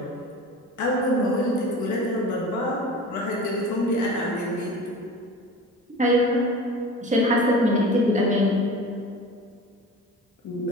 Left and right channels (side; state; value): both; normal; correlation 0.36